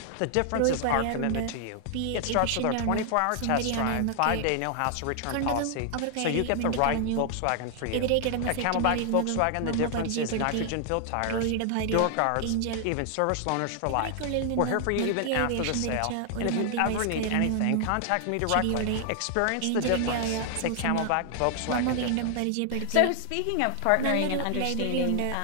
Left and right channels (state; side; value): different; both; correlation 0.00